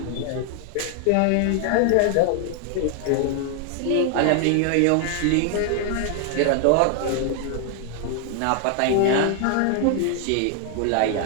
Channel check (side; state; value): both; different; correlation 0.00